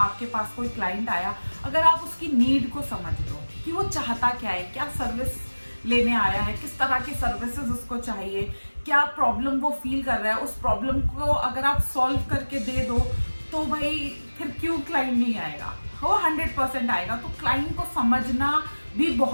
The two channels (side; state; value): both; inverted; correlation -1.00